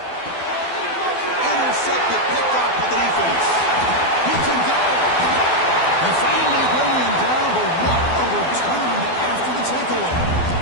Intercepted, picked off by the defense. He can go. And finally bringing him down, but what a return after the takeaway.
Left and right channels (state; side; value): late; right; 12 ms